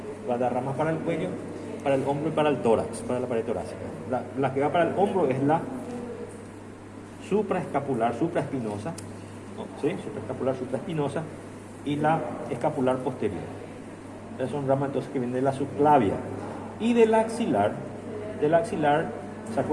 Va a dar ramas para el cuello, para el hombro y para el tórax, para la pared torácica. La que va para el hombro es la supraescapular, supraespinosa, ¿no? ¿Sí? Supraescapular, supraespinosa, y la escapular posterior. Esas son ramas entonces que vienen de la subclavia. Y del axilar, ¿se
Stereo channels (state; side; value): identical; both; correlation 1.00